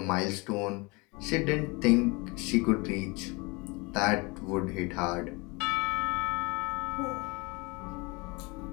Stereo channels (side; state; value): right; quieter; 27.0 dB